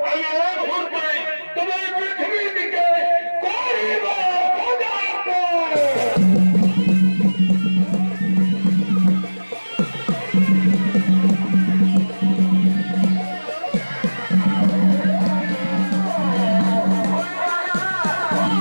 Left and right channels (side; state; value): both; inverted; correlation -1.00